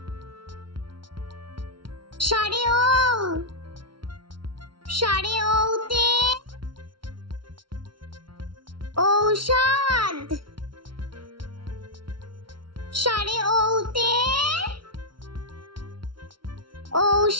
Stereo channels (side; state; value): left; late; 0.73 ms